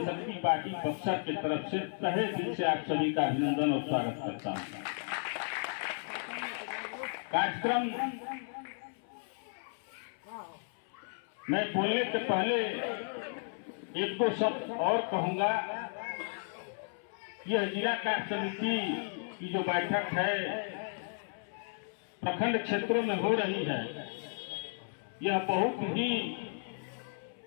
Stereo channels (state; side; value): silent; right; 55 dB below the other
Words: पार्टी बक्सर की तरफ से तहे दिल से आप सभी का अभिनंदन और स्वागत करता हूं। कार्यक्रम मैं बोलने से पहले एक दो शब्द और कहूंगा। यह जिला कार्य समिति की जो बैठक है प्रखंड क्षेत्रों में हो रही है, यह बहुत ही